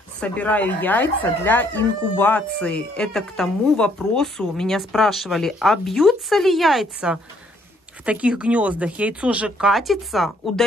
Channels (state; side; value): normal; both; correlation 0.67